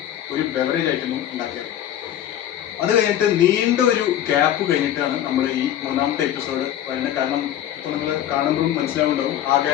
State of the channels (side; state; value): right; quieter; 11.5 dB